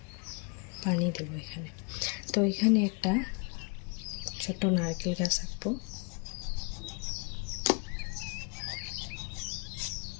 পানি দেব এখানে। তো এখানে একটা ছোট্ট নারকেল গাছ আঁকবো।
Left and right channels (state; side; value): quieter; right; 33.6 dB